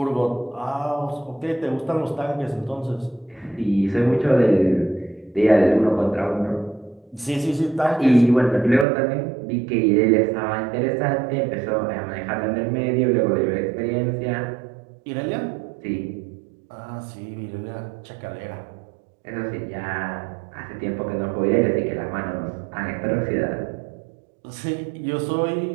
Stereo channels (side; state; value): left; drops out; at 8.8 s